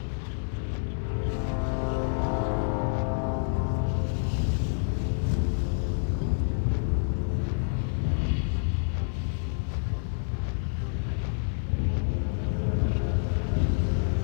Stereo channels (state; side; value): silent; right; digital silence